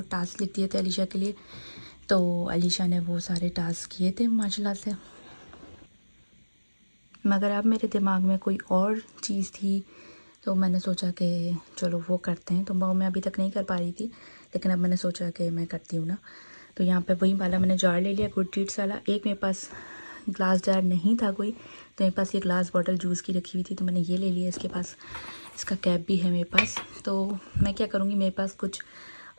टास्क लिख दिए थे अलीशा के लिए। तो अलीशा ने वो सारे टास्क किए थे माशाल्लाह से, मगर अब मेरे दिमाग में कोई और चीज़ थी, तो मैंने सोचा कि चलो वो करते हैं। तो वो मैं अभी तक नहीं कर पा रही थी, लेकिन अब मैंने सोचा कि मैं करती हूँ ना। तो यहाँ पे वही वाला मैंने जार ले लिया, गुड डीड्स वाला। एक मेरे पास ग्लास जार नहीं था कोई, तो मेरे पास ये ग्लास बॉटल जूस की रखी हुई थी, तो मैंने ये ले लिया। इसके पास इसका कैप भी है मेरे पास। तो मैं क्या करूँगी, मेरे पास कुछ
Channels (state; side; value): inverted; both; correlation -1.00